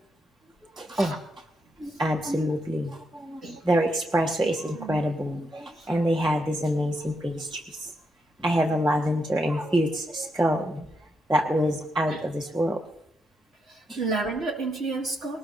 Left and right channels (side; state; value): both; normal; correlation 0.81